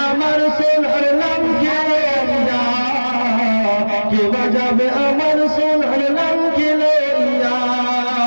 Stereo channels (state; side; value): inverted; both; correlation -1.00